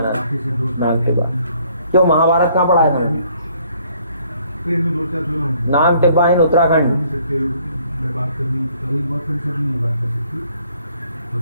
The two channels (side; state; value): both; inverted; correlation -0.63